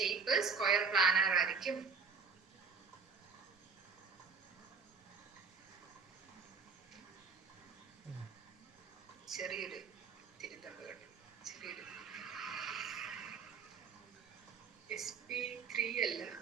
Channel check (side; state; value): left; quieter; 5.3 dB